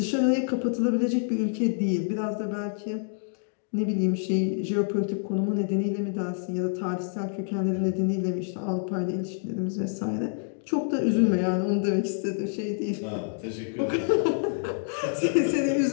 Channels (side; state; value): right; silent; digital silence